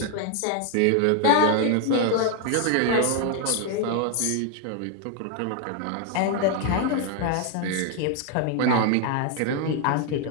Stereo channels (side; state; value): both; different; correlation 0.00